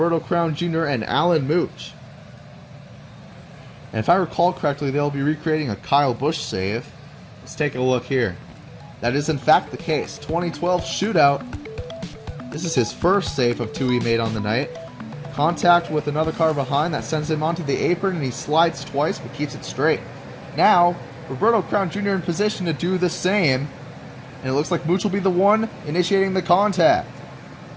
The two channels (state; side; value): identical; both; correlation 1.00